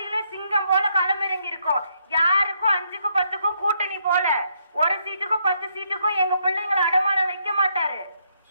சிங்கம் போல களமிறங்கி இருக்கோம். யாருக்கும் 5க்கும் 10க்கும் கூட்டணி போல, ஒரு சீட்டுக்கும் 10 சீட்டுக்கும் எங்க பிள்ளைங்களை அடமானம் வைக்க மாட்டாரு.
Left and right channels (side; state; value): both; inverted; correlation -0.74